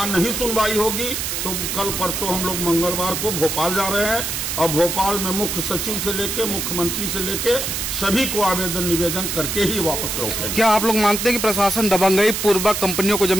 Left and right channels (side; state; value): right; noise; hiss, 2 dB below the sound